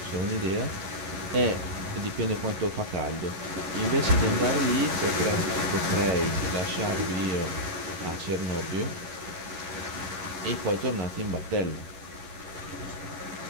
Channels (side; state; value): left; late; 11 ms